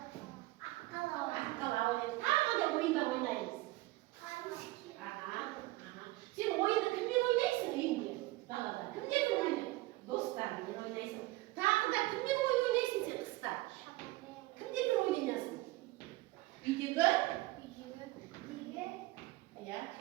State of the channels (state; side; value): quieter; left; 19.7 dB